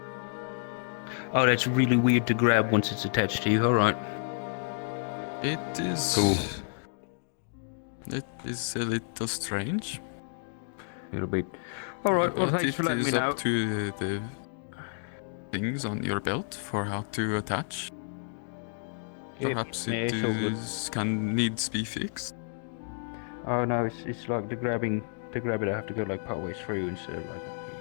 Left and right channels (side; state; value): right; silent; digital silence